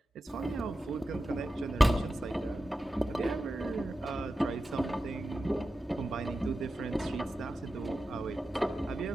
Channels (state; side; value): normal; both; correlation 0.92